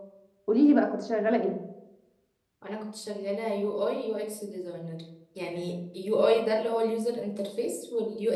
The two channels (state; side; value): identical; both; correlation 1.00